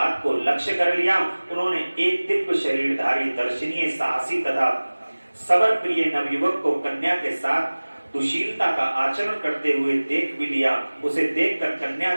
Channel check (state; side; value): inverted; both; correlation -1.00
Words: को लक्ष्य कर लिया। उन्होंने एक दिव्य शरीरधारी दर्शनीय साहसी तथा सबर प्रिय नवयुवक को कन्या के साथ दुशीलता का आचरण करते हुए देख भी लिया। उसे देखकर कन्या